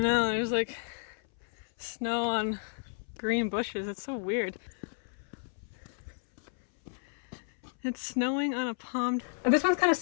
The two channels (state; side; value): silent; right; 57 dB below the other